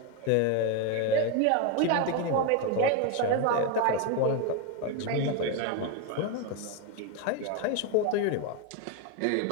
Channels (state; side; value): different; both; correlation 0.02